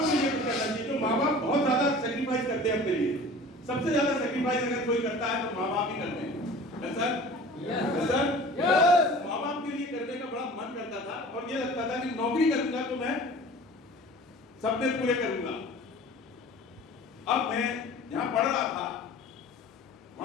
के लिए कुछ करना चाहिए। तो माँ बाप बहुत ज्यादा सेक्रीफाइस करते हैं अपने लिए। सबसे ज्यादा सेक्रीफाइस अगर कोई करता है तो माँ बाप ही करते हैं। सर माँ बाप के लिए करने का बड़ा मन करता था और ये लगता था कि नौकरी करूंगा तो मैं सपने पूरे करूंगा। अब मैं यहाँ पढ़ रहा था,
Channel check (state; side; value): normal; both; correlation 0.43